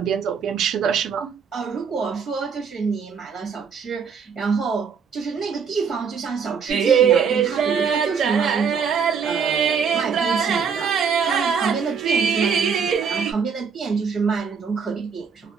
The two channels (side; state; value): left; quieter; 6.2 dB